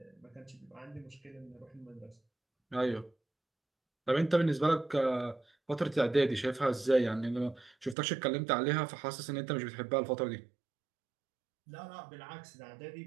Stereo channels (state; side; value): drops out; left; at 8.0 s